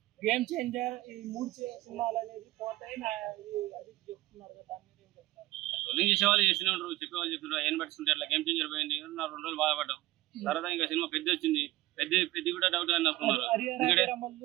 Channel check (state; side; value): quieter; left; 18.2 dB